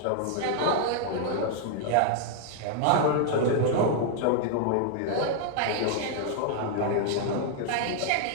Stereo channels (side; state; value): both; different; correlation -0.01